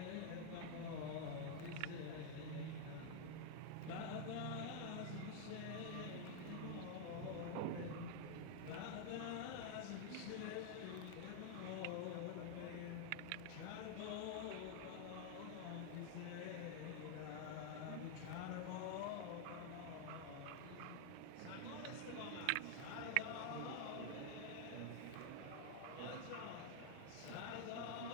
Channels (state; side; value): different; both; correlation 0.00